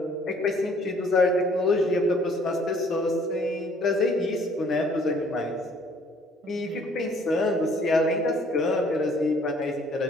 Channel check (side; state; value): both; normal; correlation 0.60